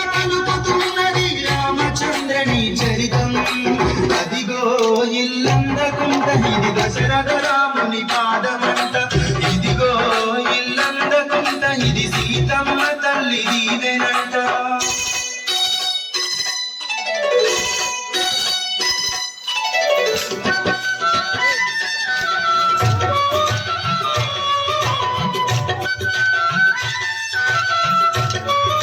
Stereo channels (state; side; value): identical; both; correlation 1.00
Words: పలుకుతున్నది రామచంద్రని చరితం అదిగో ఇల్లందకుంట ఇది దశరథ రాముని పాదమంట ఇదిగో ఇల్లందకుంట ఇది సీతమ్మ తల్లి దీవెనంట